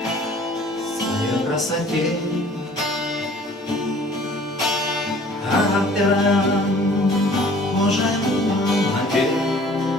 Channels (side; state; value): both; normal; correlation 0.52